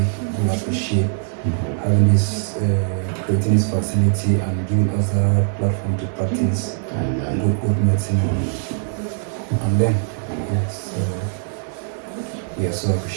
appreciate having this, creating this facility and giving us a platform to practice good medicine on them. Yes, we are so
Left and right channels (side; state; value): left; silent; digital silence